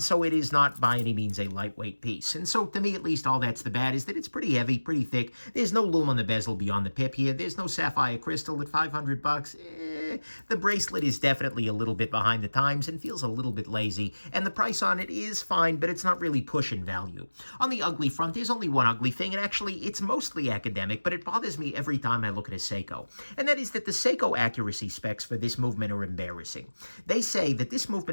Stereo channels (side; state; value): both; inverted; correlation -1.00